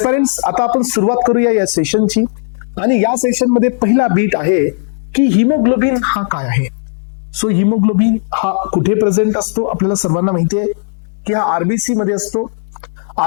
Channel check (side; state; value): right; silent; digital silence